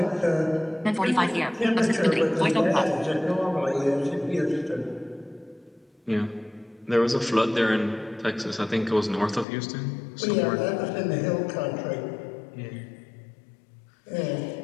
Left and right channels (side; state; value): right; drops out; at 9.5 s